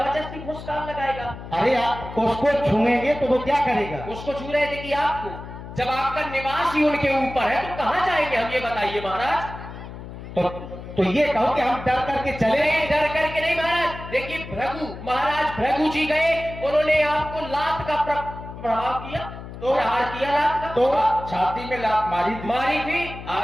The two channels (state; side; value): noise; left; hum, 12 dB below the sound